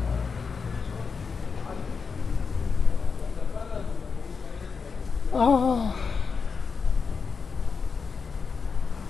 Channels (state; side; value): quieter; right; 5.3 dB